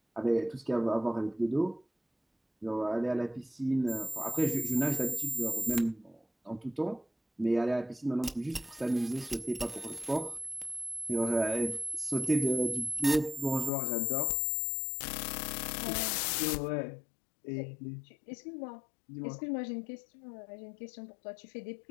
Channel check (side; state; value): right; drops out; at 13.7 s